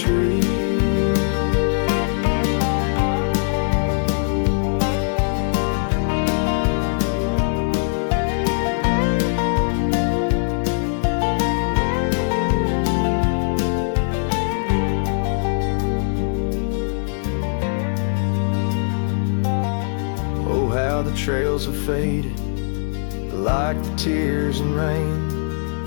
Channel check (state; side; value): silent; right; 65 dB below the other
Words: Oh, how the trails have faded, like the tears and rain,